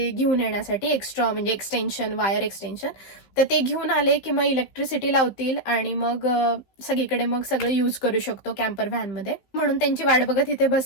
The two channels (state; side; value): late; right; 15 ms